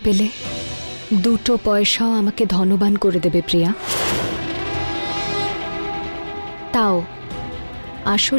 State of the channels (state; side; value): inverted; both; correlation -1.00